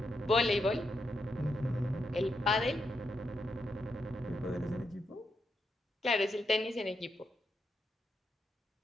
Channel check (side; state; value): both; normal; correlation 0.82